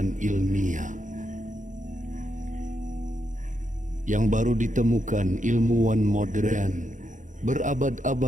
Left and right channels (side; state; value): left; late; 0.37 ms